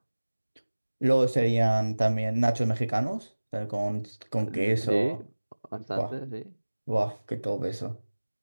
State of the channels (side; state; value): both; inverted; correlation -1.00